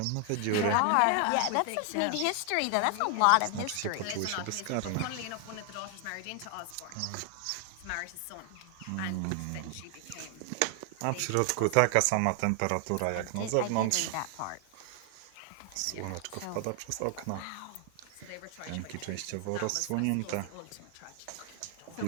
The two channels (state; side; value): different; both; correlation 0.00